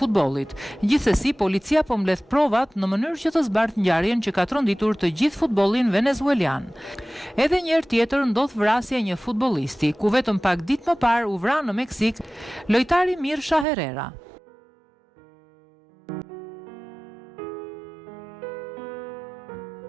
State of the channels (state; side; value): drops out; left; at 13.7 s